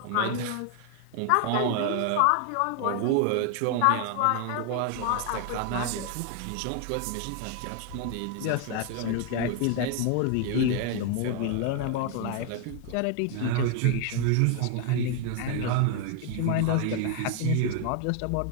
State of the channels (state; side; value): different; both; correlation 0.00